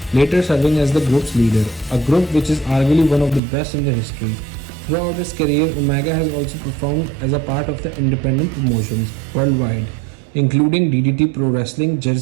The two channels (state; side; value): drops out; left; at 3.4 s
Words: later serving as the group's leader, a group which is arguably one of the best in the history. Throughout his career, Omega has also performed as a part of the independent promotions worldwide, including DDT Pro Wrestling,